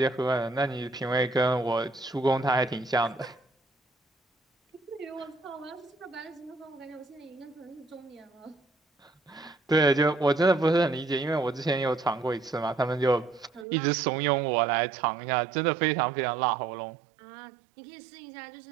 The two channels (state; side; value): drops out; left; at 13.7 s